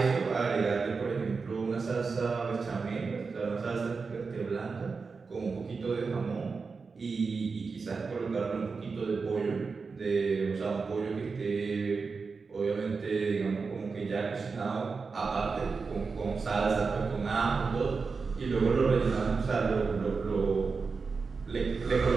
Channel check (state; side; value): quieter; left; 4.7 dB